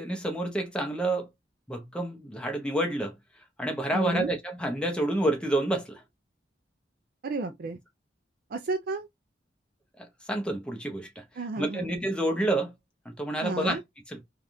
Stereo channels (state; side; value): normal; both; correlation 0.67